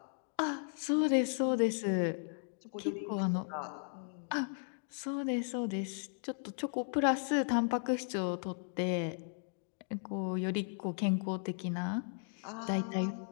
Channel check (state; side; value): silent; right; digital silence